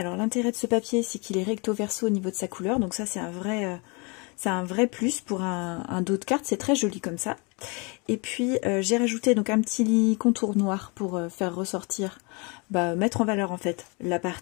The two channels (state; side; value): quieter; right; 30.8 dB